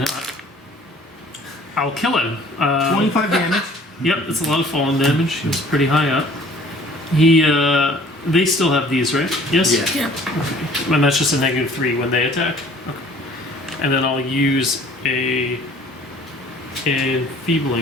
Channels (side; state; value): both; normal; correlation 0.53